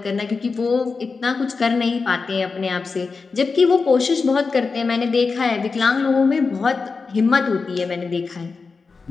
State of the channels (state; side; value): quieter; right; 4.6 dB